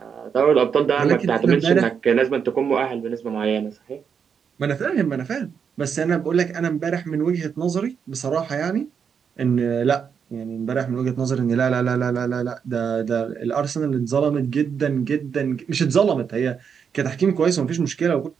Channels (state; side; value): quieter; left; 6.9 dB